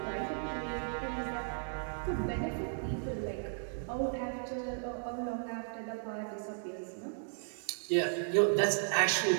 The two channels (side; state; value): left; silent; digital silence